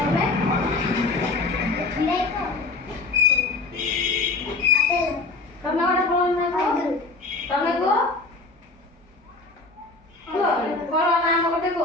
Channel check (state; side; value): quieter; right; 3.5 dB